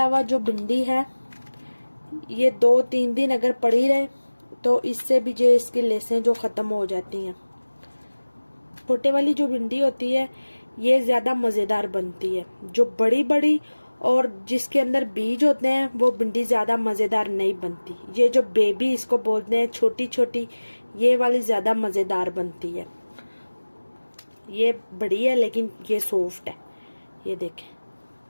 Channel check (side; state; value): both; inverted; correlation -1.00